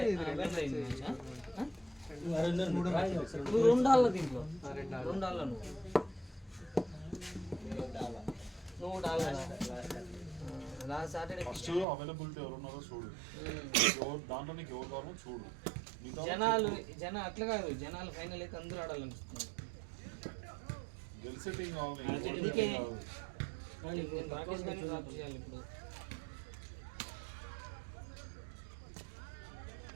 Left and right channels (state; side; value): drops out; left; at 11.9 s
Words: నువ్వు 2 ఆళ్ళ దీంట్లో 2 ఆళ్ళ నువ్వు డాల్ లాస్ట్ సాటర్డే ఫస్ట్ అవైలబిలిటీ ఎవరున్నారో చూడు దాంట్లో నీకు ఎవరు కావాలో చూడు జనాలు అట్లా కాదు జనాలు ఫైనల్ అయితే అందరూ ఆడాలనిపిస్తుంది గెలిచే టీం కావాలి అందుకే రాకేష్ గారిని డ్రాప్ చేయాలి ఇప్పుడు